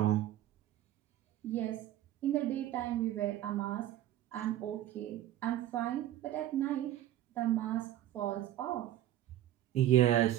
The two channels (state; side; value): quieter; left; 13.1 dB